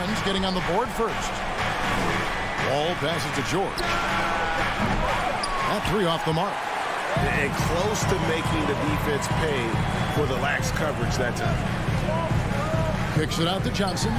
getting on the board first. Wall passes to George. That 3 off the mark. And close to making the defense pay for the lax coverage that time. Kicks it out to Johnson.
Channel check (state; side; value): identical; both; correlation 1.00